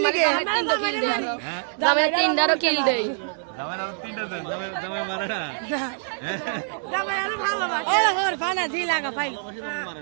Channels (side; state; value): left; silent; digital silence